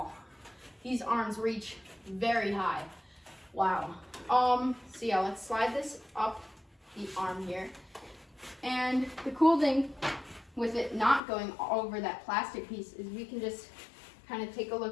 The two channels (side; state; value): right; drops out; at 11.2 s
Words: These arms reach very high. Wow. So yeah, let's slide this up the arm here. And the cool thing with it not going over that plastic piece is we can just kind of take a